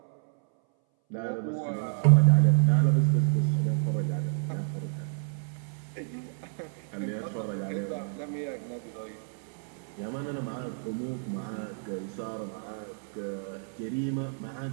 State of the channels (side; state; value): left; silent; 58 dB below the other